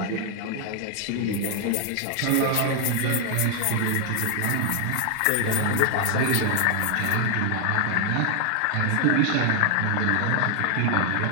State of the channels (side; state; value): both; different; correlation 0.00